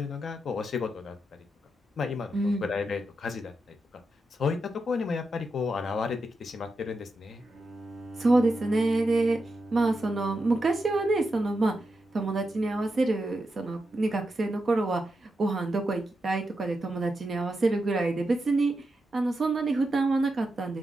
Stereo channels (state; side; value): normal; both; correlation 0.87